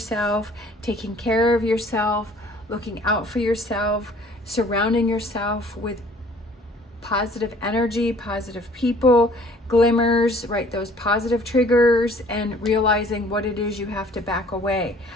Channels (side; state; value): both; normal; correlation 0.55